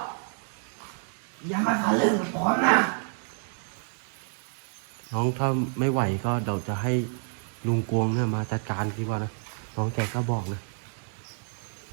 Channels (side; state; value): left; silent; 59 dB below the other